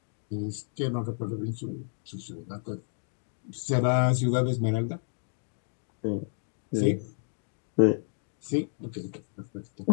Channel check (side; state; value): right; silent; digital silence